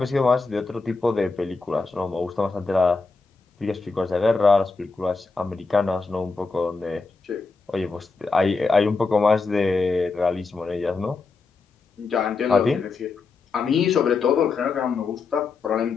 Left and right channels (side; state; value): right; quieter; 4.3 dB